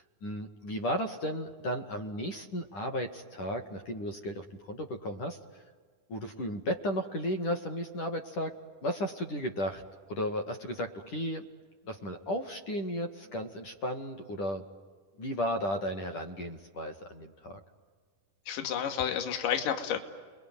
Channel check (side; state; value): right; late; 10 ms